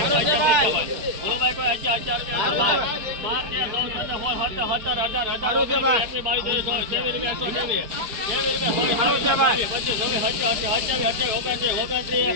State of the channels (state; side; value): late; left; 4.6 ms